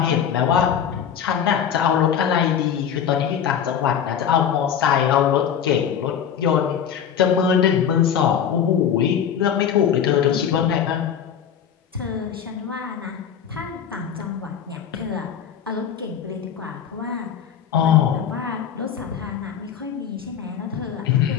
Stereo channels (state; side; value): quieter; right; 8.4 dB